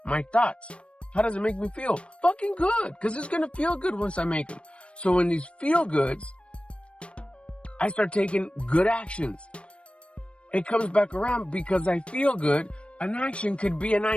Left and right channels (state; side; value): late; right; 0.059 ms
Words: my thoughts. How does it make me feel? Fucking good. Because it's going to feel good once I make them. So when these feel goods, I start taking good actions. It comes back around because I feel good. An action could be an